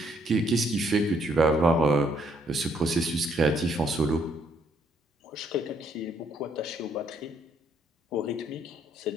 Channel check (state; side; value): normal; both; correlation 0.69